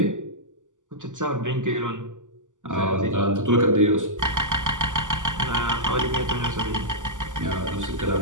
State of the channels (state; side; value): late; left; 0.87 ms